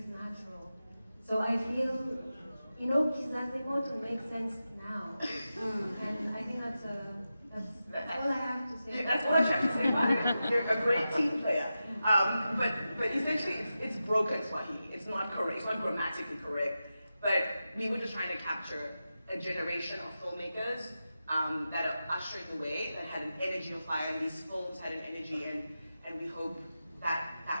natural. So I feel, you know, Kizazi Moto makes sense now. And I think that's all I have to say. That's all I have to say about it. You're a great team player. But essentially, it's broken Swahili. It's not correct. It's not grammatically correct. But we were just trying to capture a generation of filmmakers that are ushering the way, that had an energy of fire, and these films had an energy, and we hope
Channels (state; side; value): inverted; both; correlation -0.91